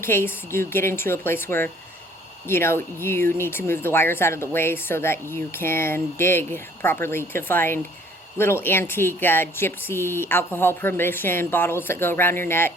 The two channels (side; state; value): both; normal; correlation 0.57